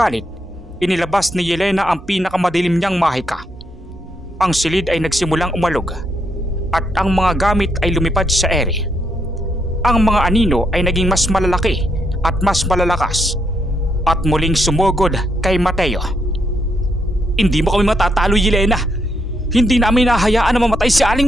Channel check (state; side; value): normal; both; correlation 0.77